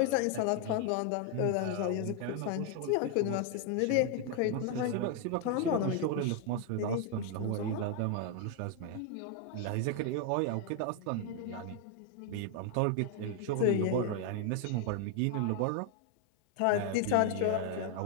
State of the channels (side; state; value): both; different; correlation 0.01